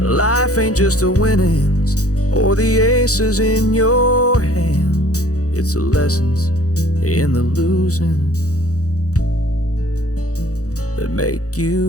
Life ain't just the winnings or the aces in your hand, it's the lessons in the losing that make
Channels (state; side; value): late; right; 0.66 ms